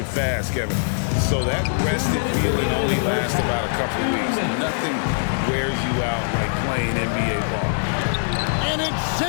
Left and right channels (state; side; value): silent; right; digital silence